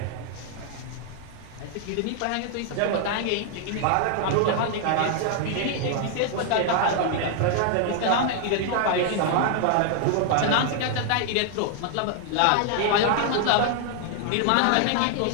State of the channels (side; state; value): both; different; correlation 0.00